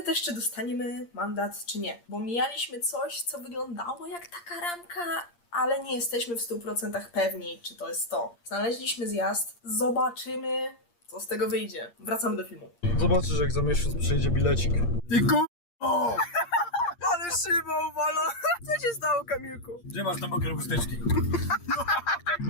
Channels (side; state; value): right; late; 8.6 ms